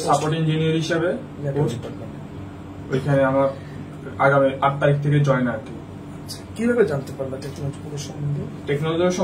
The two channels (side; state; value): both; identical; correlation 1.00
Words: সাপোর্ট ইঞ্জিনিয়ার হিসেবে ওইখানে আমার আগামী 8 তারিখ থেকে জয়েন আর কি। কিভাবে জানতে পারলা টেকনোলজি